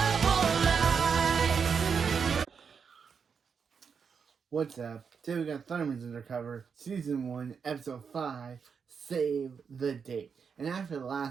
life. What's up? Today we got Thunderman's Undercover, Season 1, Episode 5, Save the Date. And after the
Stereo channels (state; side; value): quieter; left; 6.2 dB